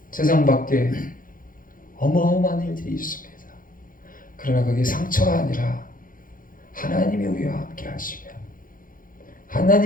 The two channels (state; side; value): late; right; 0.40 ms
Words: 세상 밖에 어마어마한 일들이 있습니다. 그러나 그게 상처가 아니라 하나님이 우리와 함께 하시면,